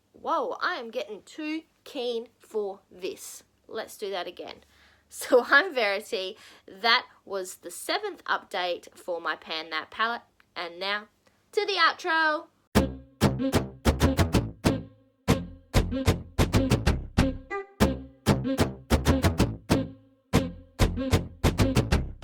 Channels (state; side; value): identical; both; correlation 1.00